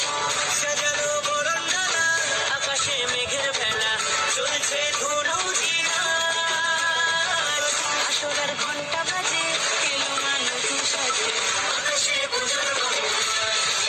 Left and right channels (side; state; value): both; identical; correlation 1.00